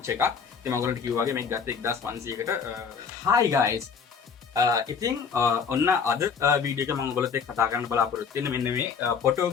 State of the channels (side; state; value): right; quieter; 6.2 dB